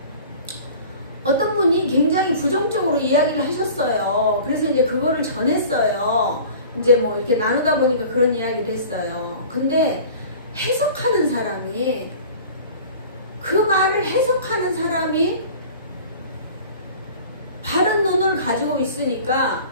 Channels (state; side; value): inverted; both; correlation -0.43